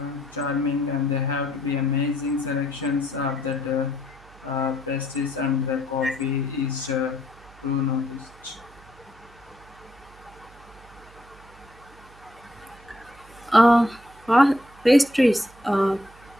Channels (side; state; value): right; noise; hum, 24 dB below the sound